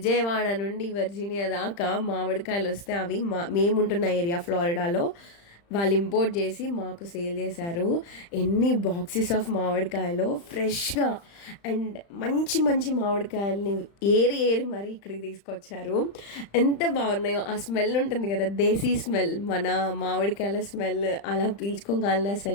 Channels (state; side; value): late; right; 35 ms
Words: నుండి వర్జీనియా దాకా మామిడికాయలు వస్తే అవి మేముంటున్న ఏరియా ఫ్లోరిడాలో వాళ్ళు ఇంపోర్ట్ చేసి మాకు సేల్ చేశారు. ఎన్ని బాక్సెస్ ఆఫ్ మామిడికాయలు ఫ్రెష్గా అండ్ మంచి మంచి మామిడికాయలని ఏరి ఏరి మరీ ఇక్కడికి తీసుకొచ్చారు. ఎంత బాగున్నాయో. ఆ స్మెల్ ఉంటుంది కదా, దేశీ స్మెల్, మన మామిడికాయల స్మెల్ అలా పీల్చుకోగలను.